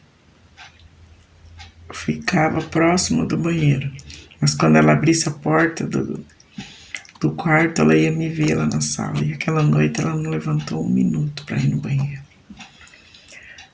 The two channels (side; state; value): both; identical; correlation 1.00